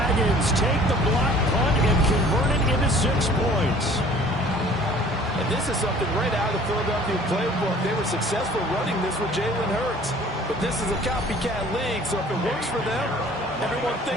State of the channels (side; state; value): both; normal; correlation 0.51